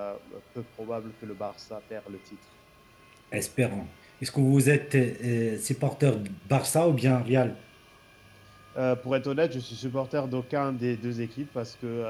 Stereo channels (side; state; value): both; identical; correlation 1.00